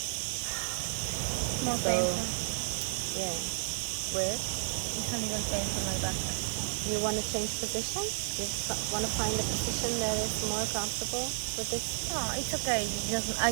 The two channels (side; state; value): left; silent; digital silence